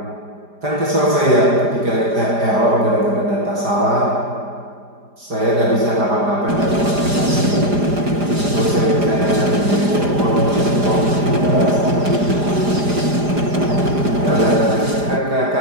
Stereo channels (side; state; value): left; late; 4.9 ms